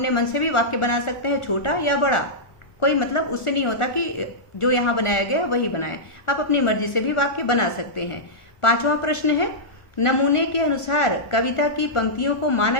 मन से भी वाक्य बना सकते हैं, छोटा या बड़ा, कोई मतलब उससे नहीं होता कि जो यहाँ बनाया गया वही बनाए, आप अपनी मर्जी से भी वाक्य बना सकते हैं। पांचवा प्रश्न है, नमूने के अनुसार कविता की पंक्तियों को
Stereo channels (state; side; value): late; right; 1.4 ms